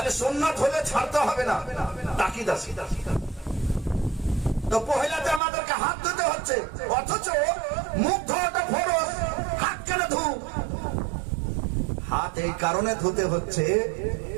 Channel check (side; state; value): left; drops out; at 5.4 s